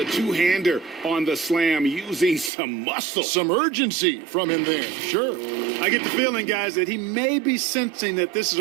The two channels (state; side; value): drops out; left; at 2.5 s